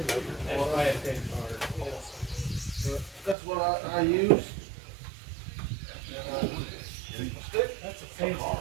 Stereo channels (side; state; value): left; drops out; at 3.4 s